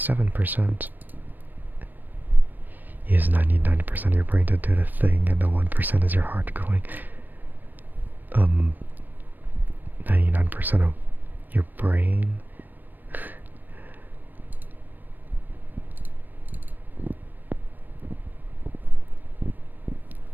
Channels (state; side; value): late; left; 0.090 ms